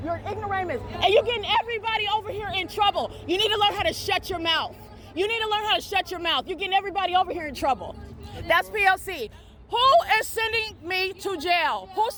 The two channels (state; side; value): identical; both; correlation 1.00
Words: You're an ignoramus. And you're getting everybody over here in trouble. You need to learn how to shut your mouth. You need to learn how to shut your mouth. You're getting everybody over here in trouble. That's P.O.C. Who is sending me to jail? Who's